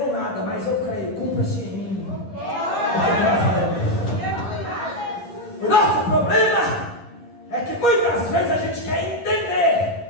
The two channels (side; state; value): right; late; 11 ms